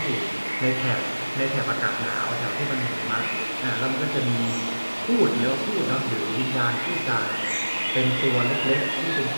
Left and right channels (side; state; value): both; inverted; correlation -1.00